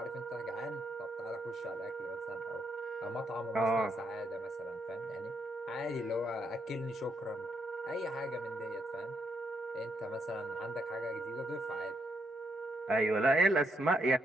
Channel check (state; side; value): normal; both; correlation 0.77